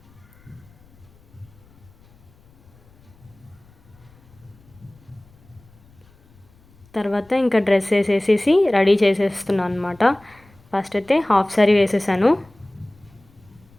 తర్వాత ఇంకా డ్రెస్ వేసేసి రెడీ చేసేస్తున్నాను అనమాట. ఫస్ట్ అయితే హాఫ్ సారీ వేసేసాను.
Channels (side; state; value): left; noise; rumble, 29 dB below the sound